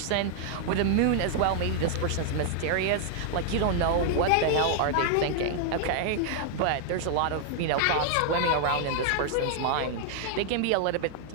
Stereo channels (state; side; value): different; both; correlation 0.00